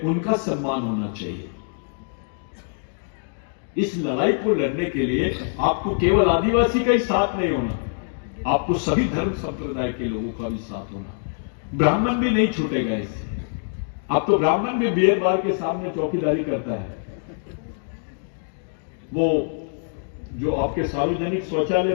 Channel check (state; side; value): silent; right; digital silence